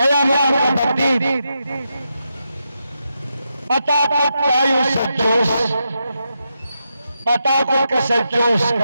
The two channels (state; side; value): inverted; both; correlation -0.85